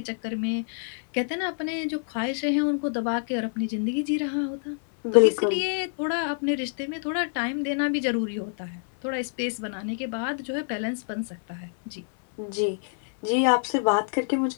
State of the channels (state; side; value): silent; right; 60 dB below the other